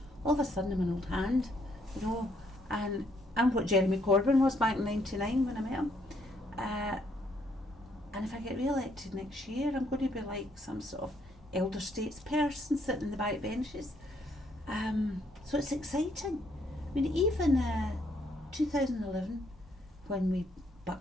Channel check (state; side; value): normal; both; correlation 0.70